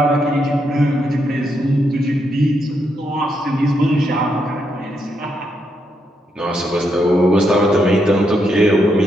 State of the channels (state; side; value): normal; both; correlation 0.80